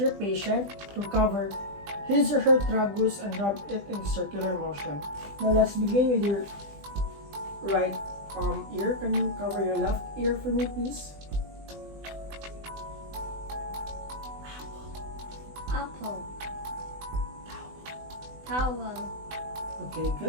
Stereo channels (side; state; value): left; late; 20 ms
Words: patient to cover his or her tragus and rub it in circular motion. Now let's begin with your right ear. Can you cover your left ear for me, please? Apple. Towel. Okay,